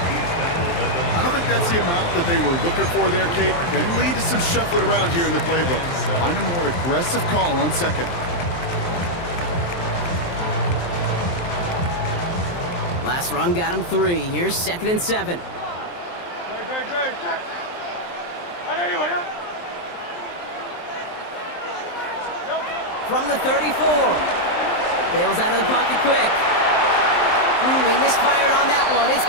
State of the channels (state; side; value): late; right; 23 ms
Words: I don't think that's the amount that they were looking for there, Kate. Going to lead to some shuffling around here in the playbook. Find a more aggressive call on second. Last run got him 3. Here's 2nd and 7. From the 34. Bails out of the pocket quick. He misfired on that one. It's